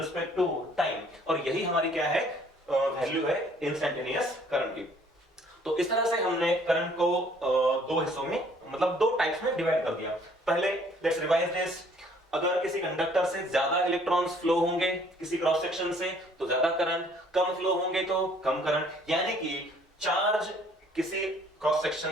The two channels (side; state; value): both; normal; correlation 0.59